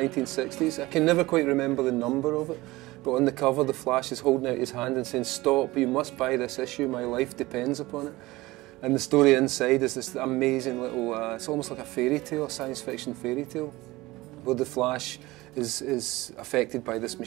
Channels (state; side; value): quieter; left; 19.8 dB